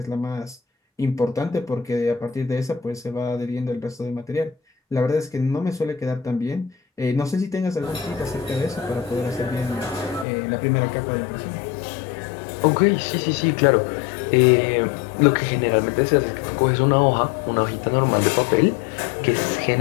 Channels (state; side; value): drops out; right; at 10.2 s